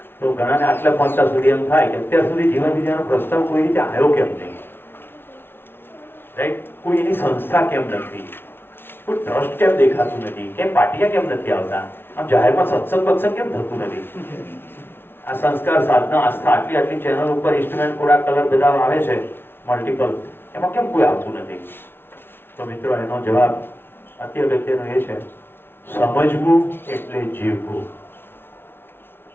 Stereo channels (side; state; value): right; late; 0.11 ms